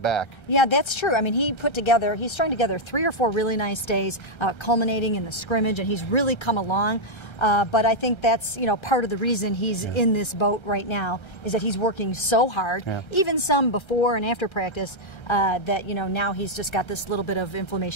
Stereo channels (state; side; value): late; right; 1.3 ms